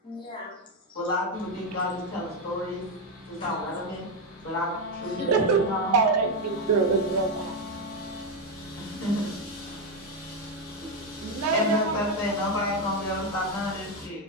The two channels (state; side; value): normal; both; correlation 0.07